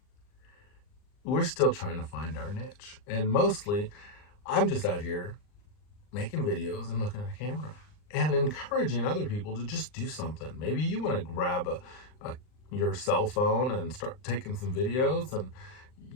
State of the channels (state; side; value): late; right; 39 ms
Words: we're still trying to find our niche. And mostly, I'm just out here making videos and looking at a camera and encouraging other people to just do something. Maybe you want to grab your cell phone and start taking some videos, and